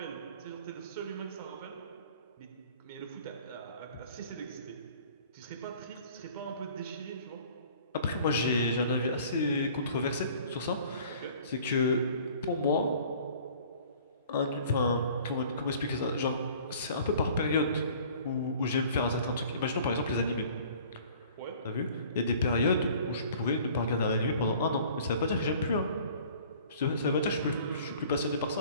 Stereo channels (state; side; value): inverted; both; correlation -0.51